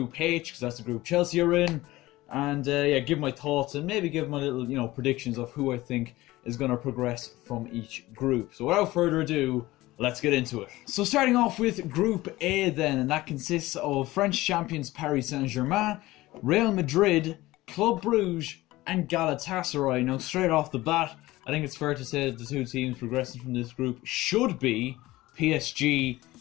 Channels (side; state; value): right; quieter; 18.2 dB